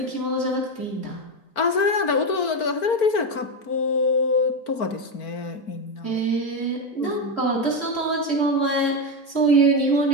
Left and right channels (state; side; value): late; right; 4.5 ms